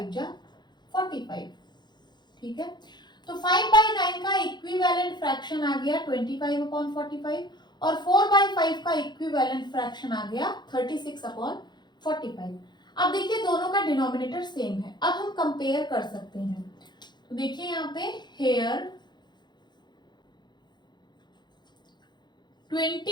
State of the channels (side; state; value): right; late; 0.21 ms